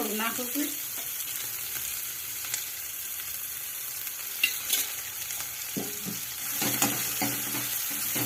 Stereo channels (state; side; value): identical; both; correlation 1.00